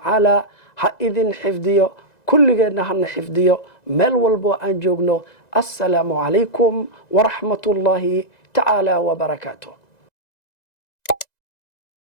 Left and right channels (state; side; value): late; right; 1.9 ms